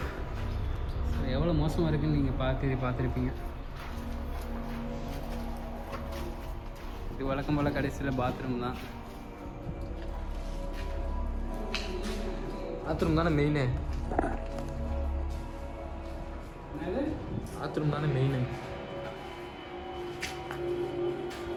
எவ்வளோ மோசமாக இருக்குன்னு. நீங்கள் பார்த்துருப்பீங்க. இது வழக்கம் போல் கடைசியில் பாத்ரூம் தான். பாத்ரூம் தானே மெயினு. பாத்ரூம் தானே மெயினு.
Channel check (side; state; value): both; identical; correlation 1.00